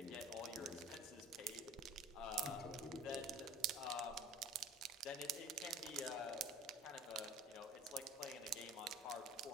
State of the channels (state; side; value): normal; both; correlation 0.45